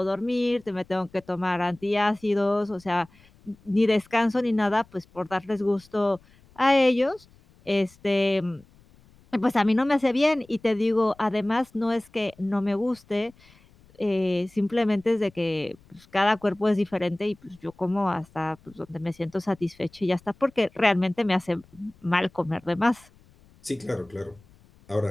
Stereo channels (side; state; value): left; noise; rumble, 28 dB below the sound